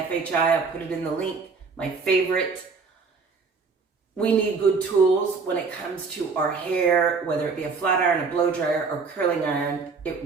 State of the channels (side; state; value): left; quieter; 4.8 dB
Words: I put it in the link, my favorite. We need good tools when it comes to our hair, whether it be a flat iron, a blow dryer, or curling iron. It